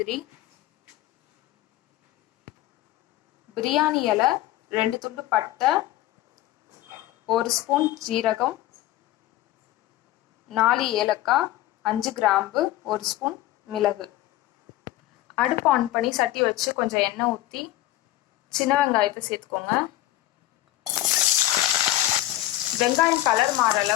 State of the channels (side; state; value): right; quieter; 15.3 dB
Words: பிரியாணி இலை, 2 துண்டு பட்டை, 1 ஸ்பூன் ஜீரகம், 4 ஏலக்காய், 5 கிராம்பு, 1 ஸ்பூன் மிளகு. அடுப்பு ஆன் பண்ணி சட்டி வச்சு கொஞ்சம் எண்ணெய் ஊற்றி சின்ன வெங்காயத்தை சேர்த்துக்கோங்க. வெங்காயம் கலர் மாற